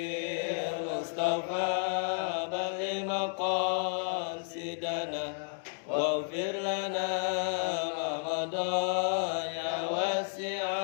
Mustafa balil maqasidana waghfir lana ma madha ya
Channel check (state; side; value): silent; right; digital silence